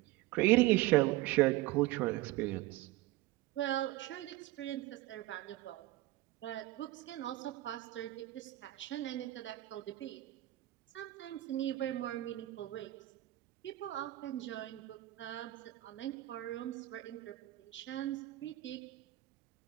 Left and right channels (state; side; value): quieter; left; 17.4 dB